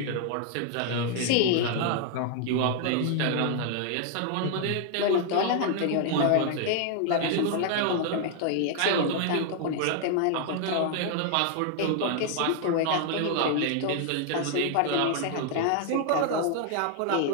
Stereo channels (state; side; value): different; both; correlation 0.00